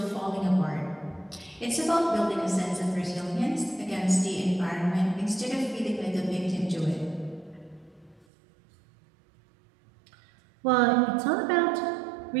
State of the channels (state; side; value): drops out; left; at 8.2 s